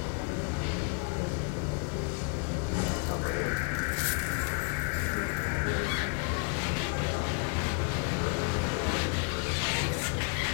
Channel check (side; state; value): right; quieter; 37.3 dB